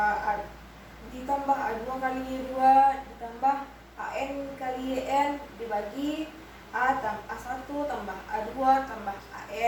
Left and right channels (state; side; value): identical; both; correlation 1.00